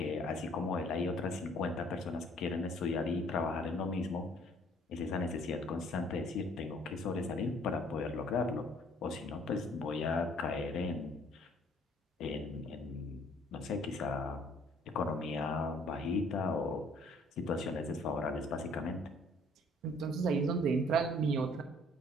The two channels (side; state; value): both; normal; correlation 0.59